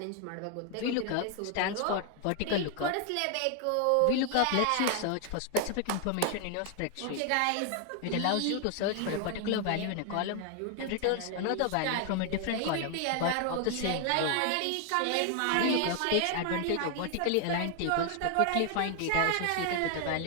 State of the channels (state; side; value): different; both; correlation 0.00